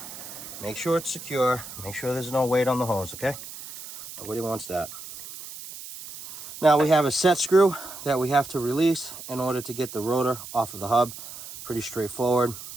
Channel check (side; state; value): right; noise; hiss, 13 dB below the sound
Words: make sure it's secure. Make sure there's no weight on the hose, okay? Nobody wants that. Now we have a set screw that we have to release in order to get the rotor off of the hub. Pretty straightforward.